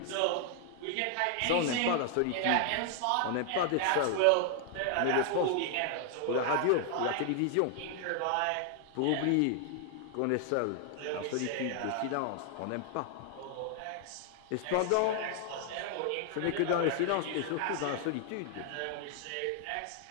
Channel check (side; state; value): both; different; correlation 0.00